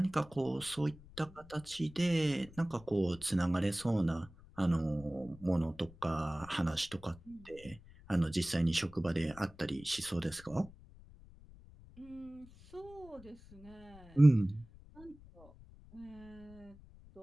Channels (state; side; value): noise; left; rumble, 21 dB below the sound